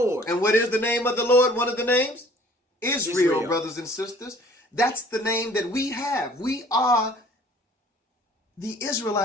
And what is the name of the Lord? One of the names? Israel, brothers and sisters. That's the name that we have. We are the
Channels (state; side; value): normal; both; correlation 0.53